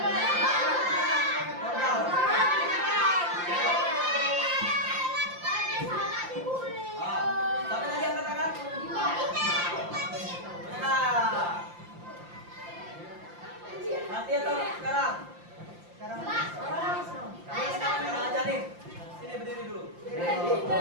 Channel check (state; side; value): late; left; 5.7 ms